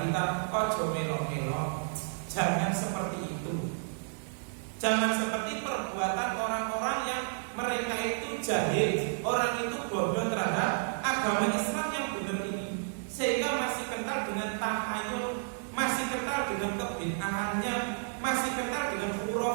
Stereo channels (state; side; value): silent; left; digital silence